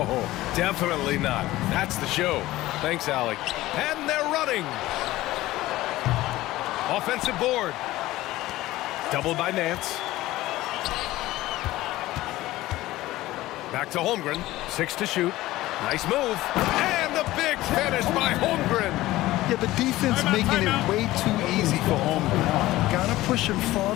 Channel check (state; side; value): quieter; right; 16.9 dB